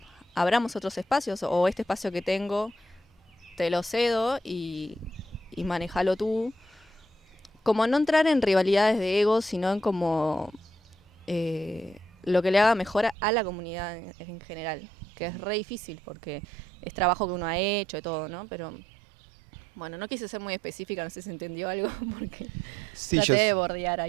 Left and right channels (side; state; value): left; drops out; at 13.2 s